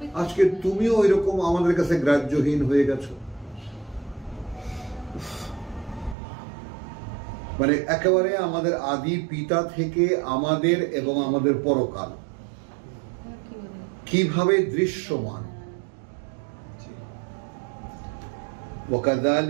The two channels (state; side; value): drops out; left; at 6.2 s